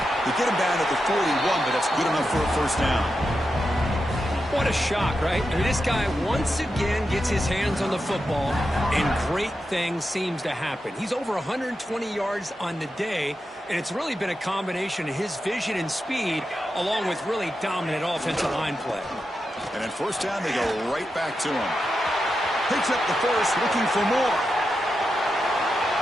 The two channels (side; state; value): both; normal; correlation 0.88